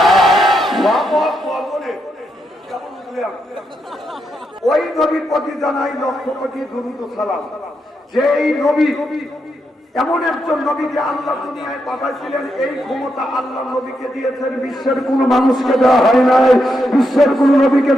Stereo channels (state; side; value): normal; both; correlation 0.82